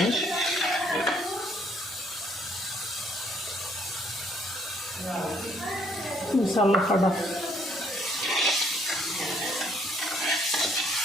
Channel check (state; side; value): normal; both; correlation 0.66